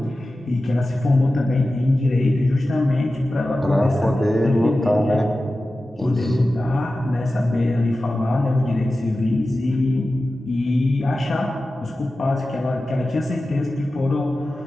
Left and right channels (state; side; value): normal; both; correlation 0.94